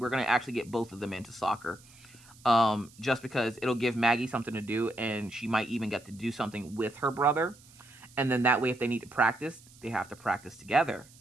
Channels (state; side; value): noise; right; hiss, 24 dB below the sound